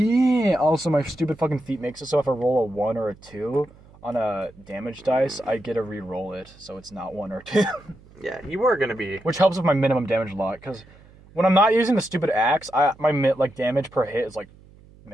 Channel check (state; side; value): noise; right; hum, 25 dB below the sound